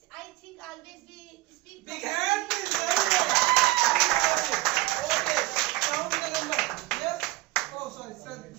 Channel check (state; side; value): quieter; left; 19.9 dB